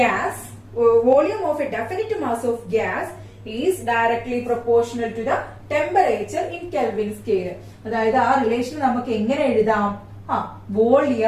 volume of a definite mass of gas is directly proportional to the temperature in Kelvin scale. അതായത് ആ റിലേഷൻ നമുക്ക് എങ്ങനെ എഴുതാം?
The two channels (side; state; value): both; identical; correlation 1.00